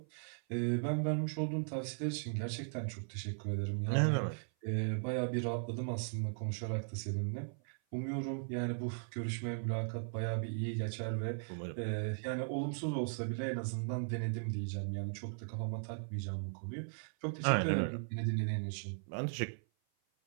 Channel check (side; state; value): left; silent; 53 dB below the other